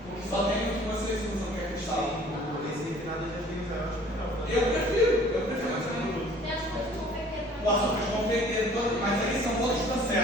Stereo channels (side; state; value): both; normal; correlation 0.52